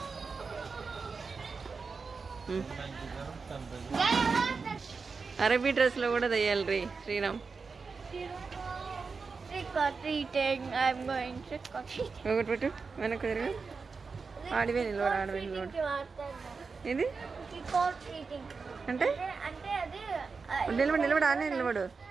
అరబీ డ్రెస్లో కూడా దయ్యాలి రీ Sriram Trick or treating. I'm going trick or treating. ఒకటి పెట్టు వెనక్కి తిరుగు ఆడివే నిలబడు ఇది Trick or treating. అంటే అంటే అది నిలబడు ఆనే నిలబడు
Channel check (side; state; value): left; quieter; 4.8 dB